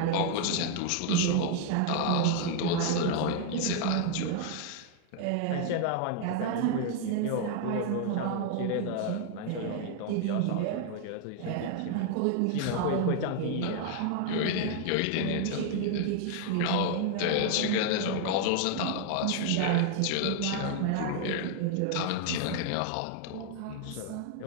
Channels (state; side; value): different; both; correlation 0.00